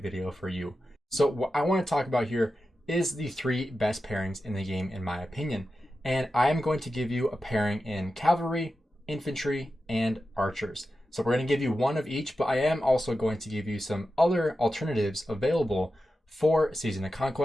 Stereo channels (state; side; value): normal; both; correlation 0.91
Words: video for you. So what I want to talk about here is the 3 best pairings in the game in my opinion. And I am going to give you a pairing in cavalry, infantry, and archers. So we're going to give you one of each, but I am also going to give you some other alternatives available for Season of